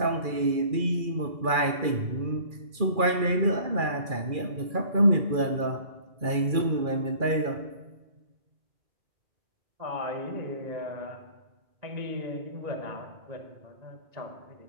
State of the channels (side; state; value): left; late; 2.4 ms